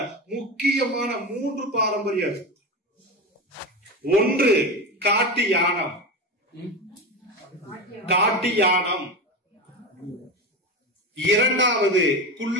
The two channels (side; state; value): both; normal; correlation 0.21